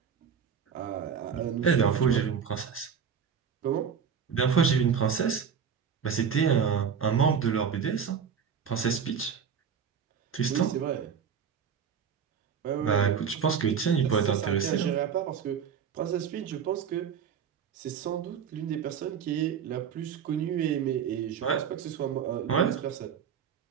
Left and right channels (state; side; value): quieter; left; 7.2 dB